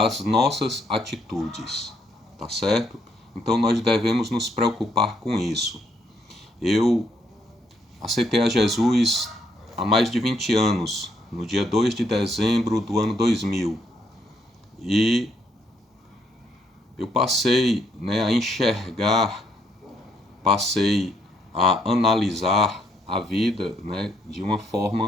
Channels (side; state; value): both; normal; correlation 0.72